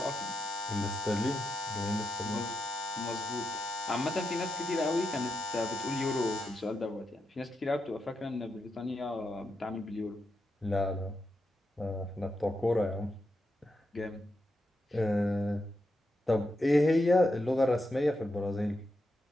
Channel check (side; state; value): both; normal; correlation 0.85